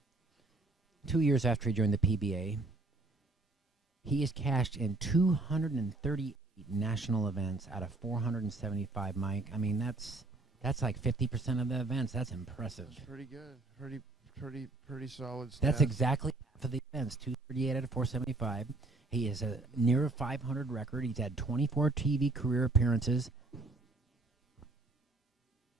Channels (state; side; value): quieter; left; 3.1 dB